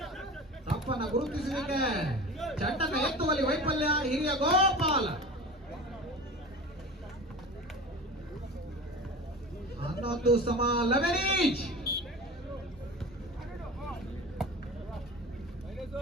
ತಪ್ಪನ್ನ ಗುರುತಿಸಲಿಕ್ಕೆ ಚೆಂಡನ್ನು ಎತ್ತುವಲ್ಲಿ ವೈಫಲ್ಯ ಹಿರಿಯ ಗೋಪಾಲ. 11 ಈಚ್.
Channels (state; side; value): normal; both; correlation 0.34